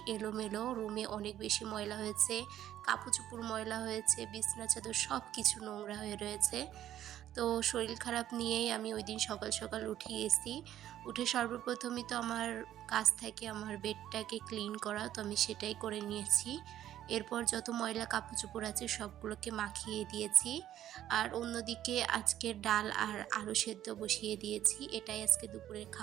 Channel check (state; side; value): quieter; left; 12.0 dB